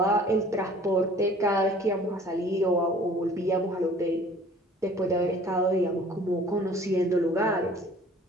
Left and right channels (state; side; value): normal; both; correlation 0.51